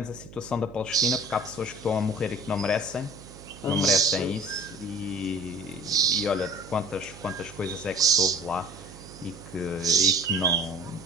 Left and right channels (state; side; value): noise; right; hum, 17 dB below the sound